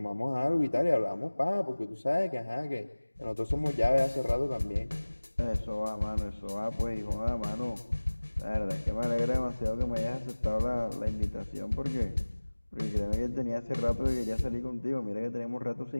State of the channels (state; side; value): inverted; both; correlation -1.00